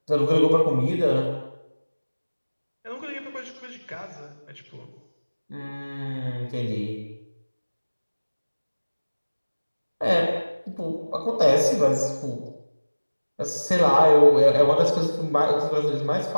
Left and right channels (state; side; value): inverted; both; correlation -1.00